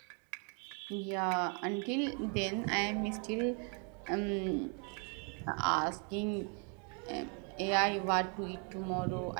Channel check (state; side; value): quieter; left; 39.4 dB